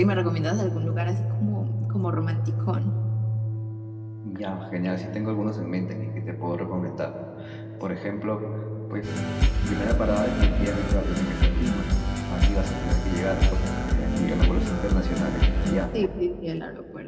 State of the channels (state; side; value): identical; both; correlation 1.00